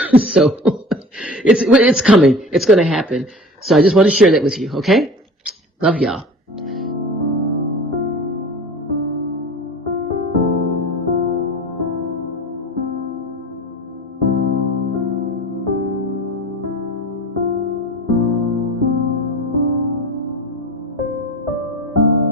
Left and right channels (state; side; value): normal; both; correlation 0.38